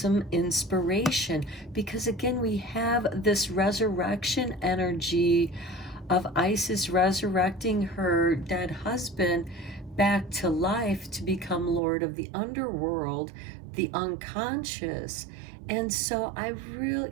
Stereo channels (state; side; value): drops out; left; at 11.8 s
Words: inspiration, because again, we have this resurrection energy of Isis resurrecting her dead husband back to life to become Lord of the underworld, the unconscious. And so I really,